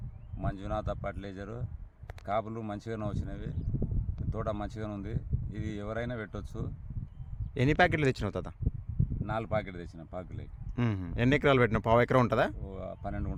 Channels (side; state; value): both; identical; correlation 1.00